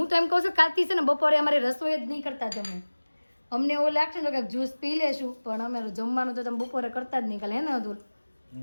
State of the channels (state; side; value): inverted; both; correlation -1.00